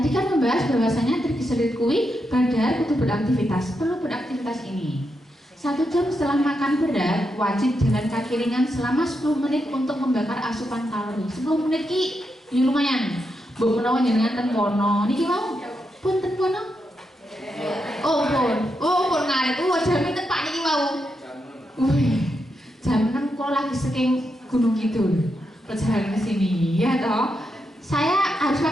kan membahas bahwasanya trigliserid kuwi badar kudu beraktivitas, perlu beraktivitas ini. 1 jam setelah makan berat, wajib jalan kaki ringan selama 10 menit untuk membakar asupan kalori. 10 menit ki, ya lumayan. Mbok menawa jenengan ten kono, niki mau pun ten kono. Oh pun ngarit. Jam ten Pak niki mau. Wih, jam 6 kok lagi saking Gunung Kidul perjalanan ke sini, ya toh. Saya harus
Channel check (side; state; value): both; normal; correlation 0.84